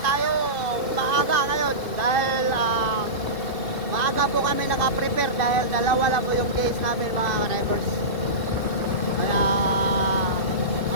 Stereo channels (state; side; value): late; left; 2.5 ms